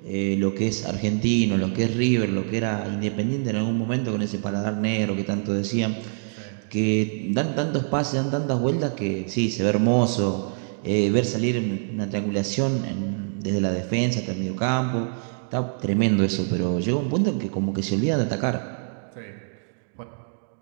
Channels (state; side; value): silent; left; digital silence